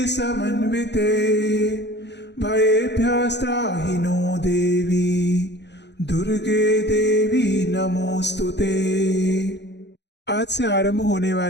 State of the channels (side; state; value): right; late; 0.50 ms